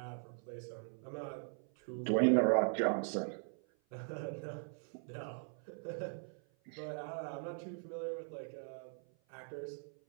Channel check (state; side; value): silent; left; 51 dB below the other